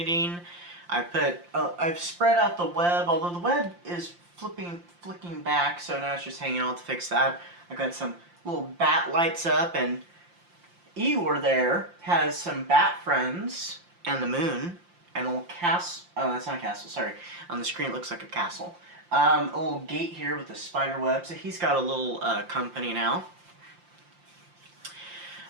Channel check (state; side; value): late; left; 5.7 ms